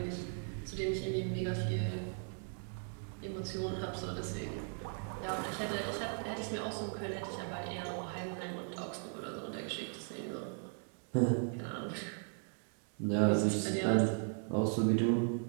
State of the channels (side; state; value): left; silent; 53 dB below the other